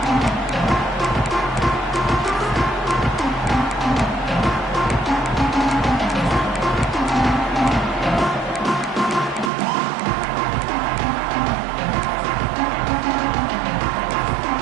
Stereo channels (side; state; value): left; drops out; at 9.5 s